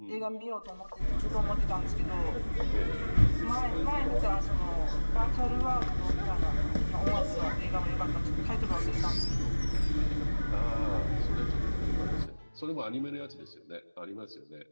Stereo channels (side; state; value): both; inverted; correlation -1.00